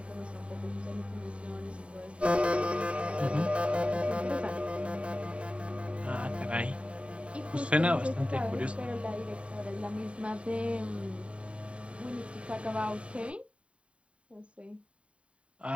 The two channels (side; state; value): left; late; 0.061 ms